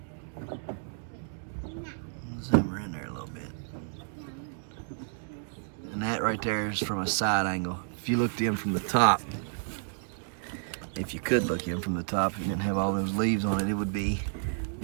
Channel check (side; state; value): left; silent; digital silence